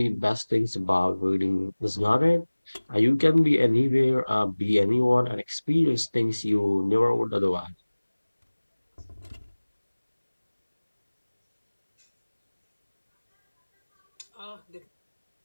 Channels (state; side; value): inverted; both; correlation -1.00